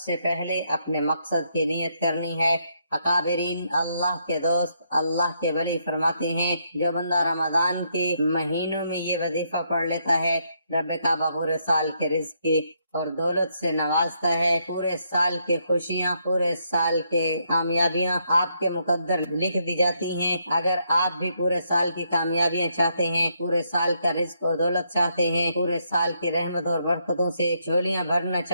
پہلے اپنے مقصد کی نیت کرنی ہے۔ اکابرین، اللہ کے دوست، اللہ کے ولی فرماتے ہیں جو بندہ رمضان کے مہینوں میں یہ وظیفہ پڑھ لیتا ہے، رب کعبہ پورے سال کے رزق کی اور دولت سے نوازتا ہے، پورے سال کے خوشیاں، پورے سال کے کامیابیاں آپ کے مقدر لکھ دی جاتی ہیں۔ اگر آپ بھی پورے سال کی کامیابیاں چاہتے ہیں، پورے سال کا رزق اور دولت چاہتے ہیں، پورے سال کی رحمت اور برکتوں سے جھولیاں بھرنا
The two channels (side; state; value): both; inverted; correlation -0.76